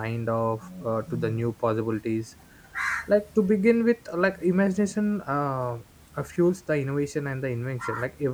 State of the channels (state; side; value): identical; both; correlation 1.00